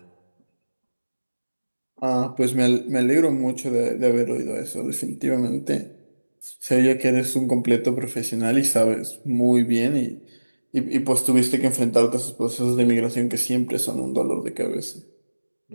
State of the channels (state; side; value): inverted; both; correlation -1.00